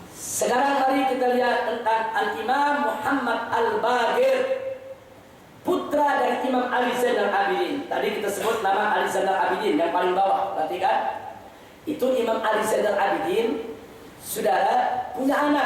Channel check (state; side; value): identical; both; correlation 1.00